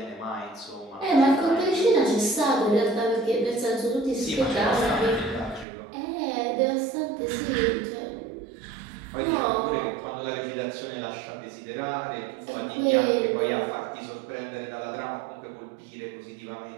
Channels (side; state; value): left; drops out; at 5.7 s